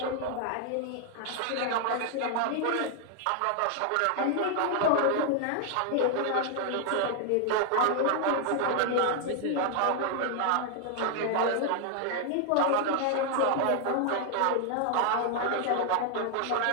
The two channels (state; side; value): different; both; correlation 0.00